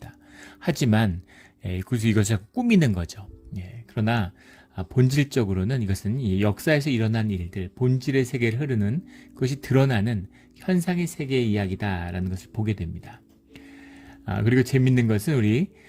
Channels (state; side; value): identical; both; correlation 1.00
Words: 하지만 그래서 이것을 꾸미는 거죠. 그러나 본질적으로는 이것은 역사에서 일어난 일들, 본질의 세계를 흐르는 그것이 드러나는 현상의 세계의 이야기다라는 것을 보게 됩니다. 그리고 재밌는 것은 우리